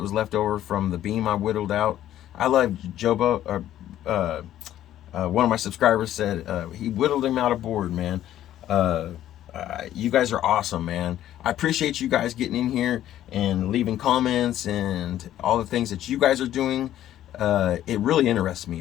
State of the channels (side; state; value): right; quieter; 12.4 dB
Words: left over from the beam I whittled out. I love Jobo. One of my subscribers said he whittled him out of board, man. You guys are awesome, man. I appreciate you guys getting in here and leaving comments and all the things that you guys are doing. It really interests